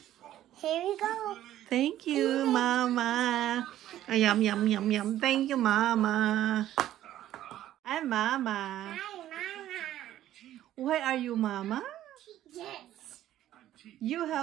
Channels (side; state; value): left; quieter; 12.8 dB